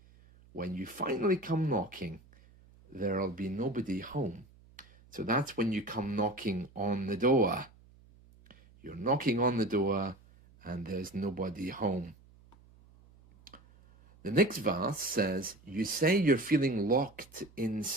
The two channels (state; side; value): noise; right; hum, 26 dB below the sound